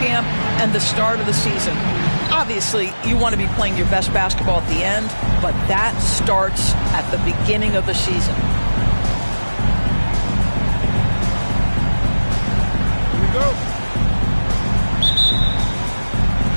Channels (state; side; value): inverted; both; correlation -1.00